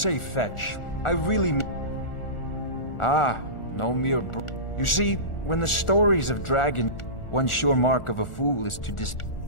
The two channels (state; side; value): late; right; 1.4 ms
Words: fetch, I really mean... Ah, no mere You see, when the stories of dragon, one sure mark of a fool is to